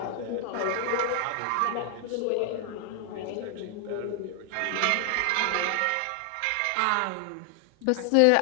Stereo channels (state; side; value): different; both; correlation 0.00